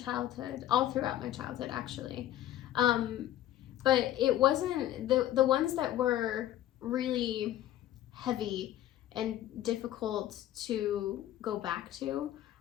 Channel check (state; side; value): quieter; right; 13.1 dB